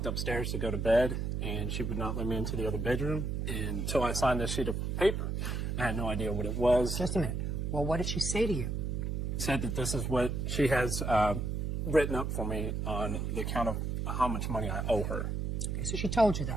upstairs to go to bed, and she would not let me into the other bedroom until I signed this sheet of paper. I had no idea what it was. Just a minute. Well, what did she say to you? Said that this is what she has written up for me on the account of how much money I owe her. Okay, so she told you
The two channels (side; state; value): right; noise; hum, 1 dB below the sound